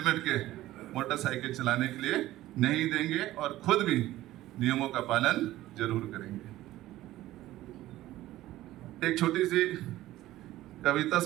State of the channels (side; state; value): left; quieter; 15.5 dB